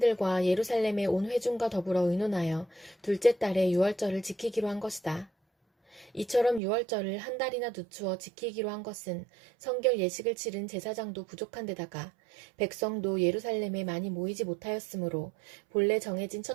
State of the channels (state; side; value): drops out; left; at 6.6 s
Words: 예루살렘의 온 회중과 더불어 의논하여 둘째 달에 유월절을 지키기로 한 것이다. 이처럼 유월절을 한 달이나 늦추어 지키기로 한 것은 성결 예식을 치른 제사장도 부족한 데다가 백성도 예루살렘에 많이 모이지 못하였으므로 본래 정해진